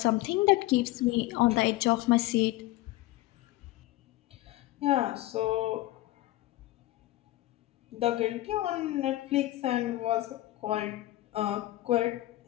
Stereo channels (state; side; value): quieter; right; 17.1 dB